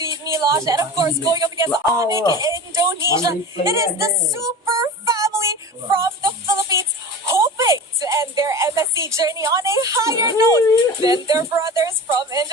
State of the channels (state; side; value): normal; both; correlation 0.33